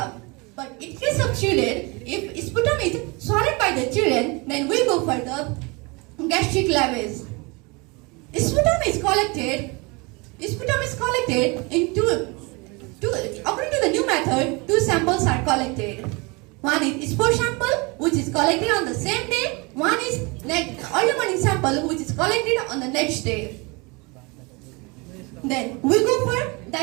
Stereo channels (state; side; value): quieter; left; 27.8 dB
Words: But in case of children, if sputum is swallowed by the children, then we go for the gastric lavage. Sputum is collected in according to the new method, 2 samples are collected. One is spore sample, which is collected on the same day. One is early morning sample, which is collected on the next day. Then we go for